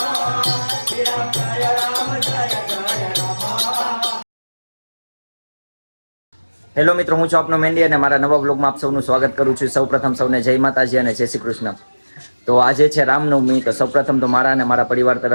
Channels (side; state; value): both; inverted; correlation -1.00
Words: હેલો મિત્રો, હું છું આપનો મેન્ડી અને મારા નવા બ્લોગમાં આપ સૌનું સ્વાગત કરું છું. સૌપ્રથમ સૌને જય માતાજી અને જય શ્રી કૃષ્ણ. તો આજે છે રામનવમી. તો સૌપ્રથમ તો મારા અને મારા પરિવાર